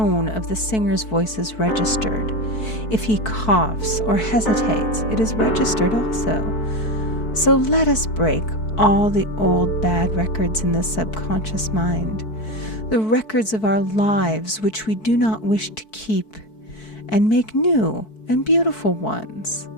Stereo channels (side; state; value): right; late; 4.6 ms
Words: of the singer's voice is registered. If he coughs or hesitates, it is registered also. So let us break all the old bad records in the subconscious mind, the records of our lives which we do not wish to keep, and make new and beautiful ones.